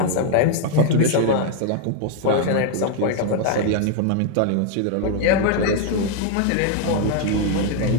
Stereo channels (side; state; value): both; different; correlation 0.00